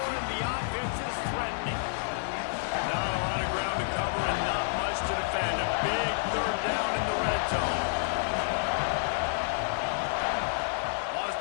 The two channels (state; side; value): silent; right; digital silence